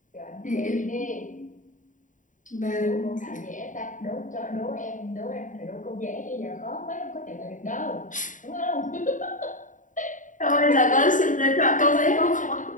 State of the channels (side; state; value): right; late; 0.37 ms